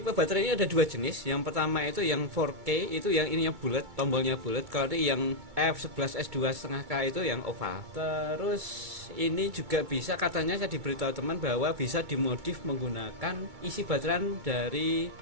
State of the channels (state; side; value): late; left; 2.2 ms